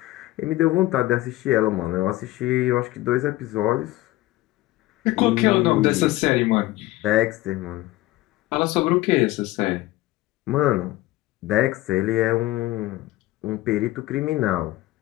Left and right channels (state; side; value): quieter; right; 17.6 dB